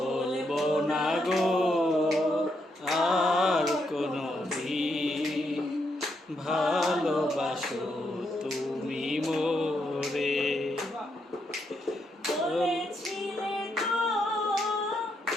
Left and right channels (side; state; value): both; normal; correlation 0.79